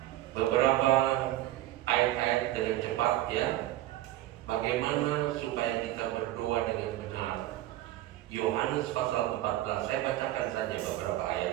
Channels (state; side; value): quieter; left; 15.0 dB